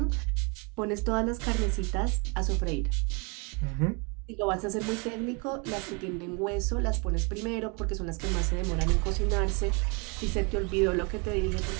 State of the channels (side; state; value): left; quieter; 32.2 dB